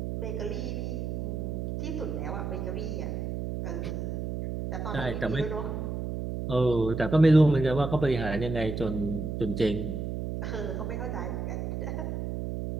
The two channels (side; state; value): right; noise; hum, 3 dB below the sound